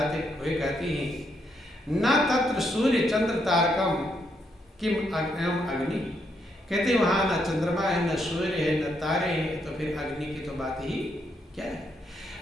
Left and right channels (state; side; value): normal; both; correlation 0.77